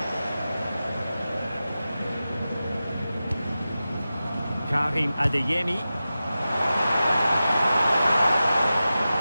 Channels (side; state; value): both; inverted; correlation -0.94